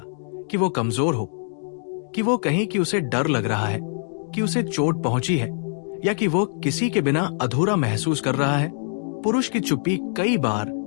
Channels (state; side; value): silent; right; digital silence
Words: कि वो कमजोर हो, कि वो कहीं कि उसे डर लग रहा है, कि उसे चोट पहुंची है, या कि वो किसी के बिना अधूरा महसूस कर रहा है। पुरुष की चुप्पी कई बार